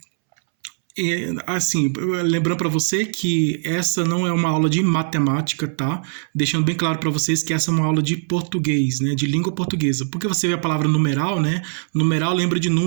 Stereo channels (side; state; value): left; silent; 65 dB below the other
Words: Assim, lembrando para você que essa não é uma aula de matemática, tá? Deixando bem claro para vocês que essa é uma aula de português, né? De língua portuguesa. Porque você vê a palavra numeral, né? Numeral lembra de